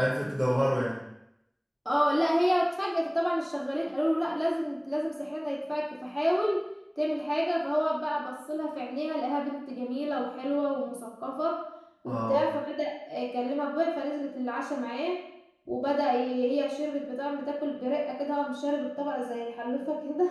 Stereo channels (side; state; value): both; identical; correlation 1.00